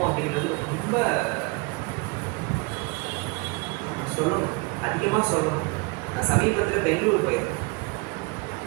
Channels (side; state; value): left; quieter; 28.1 dB